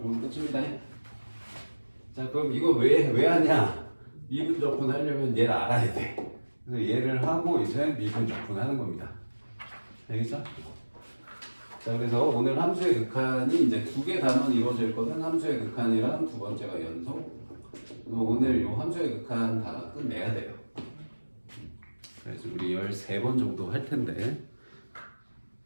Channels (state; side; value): inverted; both; correlation -1.00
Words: 끝입니다. 자, 그럼 이거 왜 하냐? 미분 적분 하려면 얘를 알아야 돼. 그래서 얘를 하고 이제 미분 적분 하는 겁니다. 알겠죠? 자, 그래서 오늘 함수의 극한이 이제 두 개 단원 이루어져 있거든. 함수의 극한이랑 두 번째가 연속. 그래서 오늘 요 함수의 극한 다 끝내야 돼요. 그래서 우리 13번 정도 할 텐데.